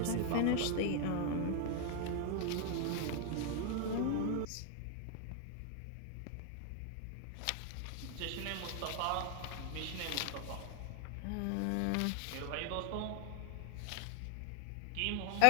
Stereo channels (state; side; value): different; both; correlation 0.00